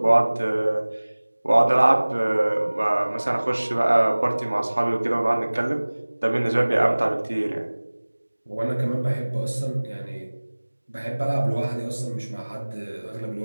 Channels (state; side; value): inverted; both; correlation -1.00